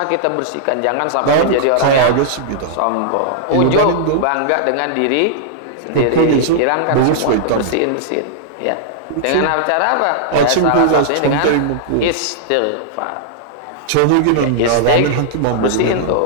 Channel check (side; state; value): both; different; correlation -0.01